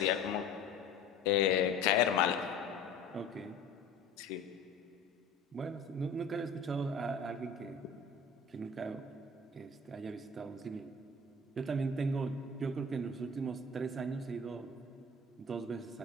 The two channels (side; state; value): right; quieter; 3.5 dB